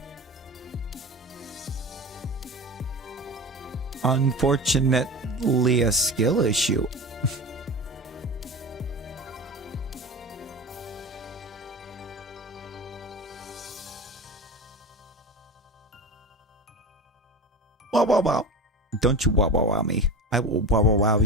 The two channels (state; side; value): normal; both; correlation 0.31